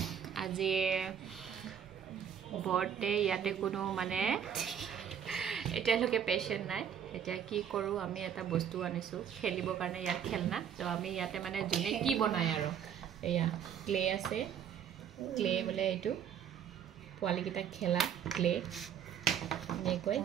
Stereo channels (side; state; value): left; quieter; 8.6 dB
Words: আজি बर्थडे ইয়াতে কোনো মানে এতিয়ালৈকে পেশেন্ট নাই এতিয়া কি কৰো আমি এটা বস্তু আনিছো খেলিবৰ কাৰণে ইয়াত খেলনা তো আমি ইয়াতে মানে জুনে কি বনায় আৰু এয়া ক্লে আছে ক্লে বলে এটো পোৱালি কিটা খেলা ক্লে নে কই